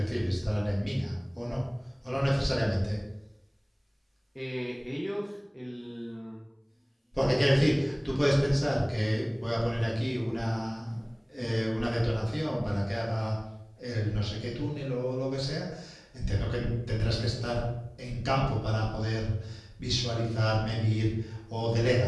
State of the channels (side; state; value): both; identical; correlation 1.00